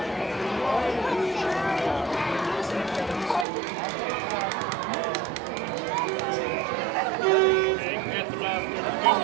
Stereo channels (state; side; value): drops out; left; at 3.5 s